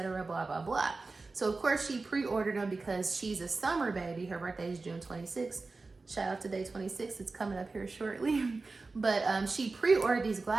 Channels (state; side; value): quieter; left; 3.7 dB